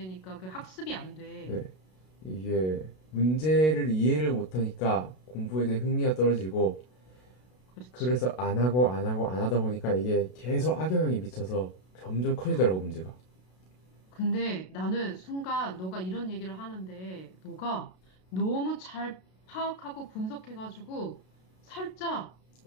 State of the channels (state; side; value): late; right; 32 ms